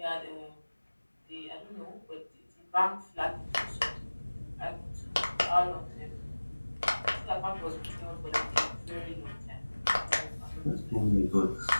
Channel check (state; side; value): inverted; both; correlation -1.00